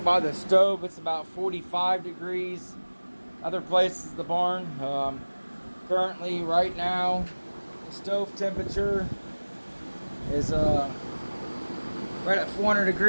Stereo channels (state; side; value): inverted; both; correlation -1.00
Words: the stove. It's about 45 degrees. Other places the barn. Currently, right now, the stove temperature is right at 400